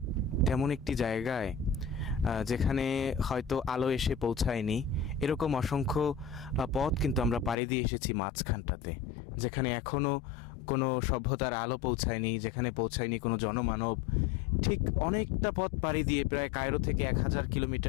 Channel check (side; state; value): right; drops out; at 7.6 s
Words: তেমন একটি জায়গায় যেখানে হয়তো আলো এসে পৌঁছায়নি, এরকম অসংখ্য পথ কিন্তু আমরা পাড়ি দিয়ে এসেছি মাঝখানটাতে, যেখানে এখনও কোনো সভ্যতার আলো পৌঁছায়নি, যেখানে পৌঁছায়নি কোনো জনমানব। ঠিক অনেকটা পথ পাড়ি দিয়ে প্রায় কায়রো থেকে 1000